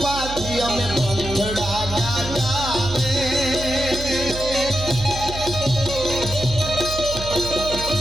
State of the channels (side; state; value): right; noise; hum, 9 dB below the sound